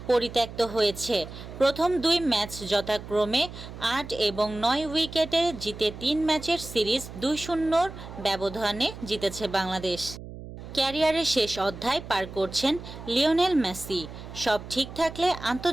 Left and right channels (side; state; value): right; noise; hum, 13 dB below the sound